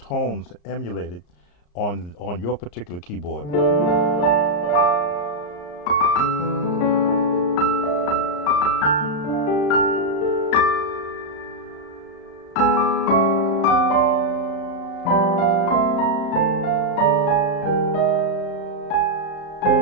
emulated on your particular keyboard.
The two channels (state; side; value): late; right; 34 ms